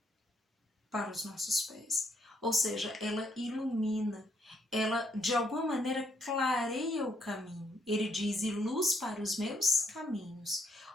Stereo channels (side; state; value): both; normal; correlation 0.73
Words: para os nossos pés. Ou seja, ela ilumina, ela de alguma maneira clareia o caminho. Ele diz: e luz para os meus caminhos.